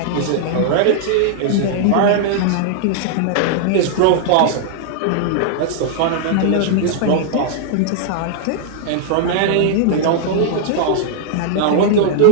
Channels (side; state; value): both; different; correlation -0.01